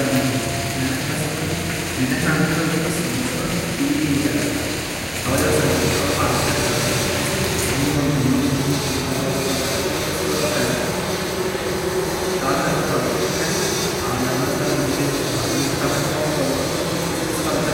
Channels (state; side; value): identical; both; correlation 1.00